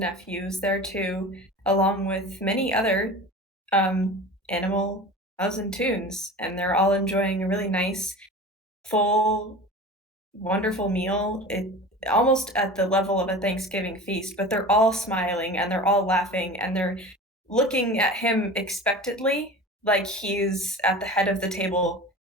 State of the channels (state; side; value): normal; both; correlation 0.35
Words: there too, along with many other animal and toons, and they're all enjoying a really nice, full, wonderful meal. It almost at the level of a Thanksgiving feast, but they're all smiling and they're all laughing and they're looking at him expectantly, like he's at the head of the table